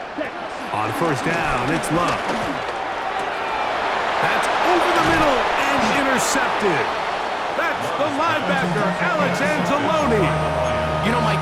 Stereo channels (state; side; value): identical; both; correlation 1.00